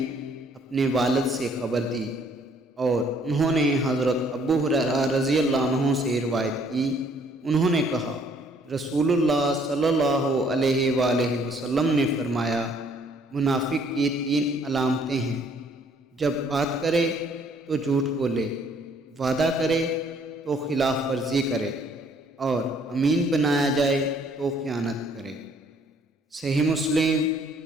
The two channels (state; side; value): normal; both; correlation 0.62